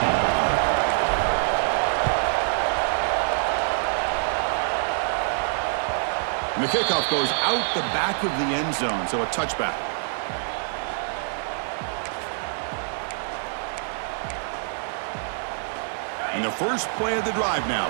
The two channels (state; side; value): silent; left; digital silence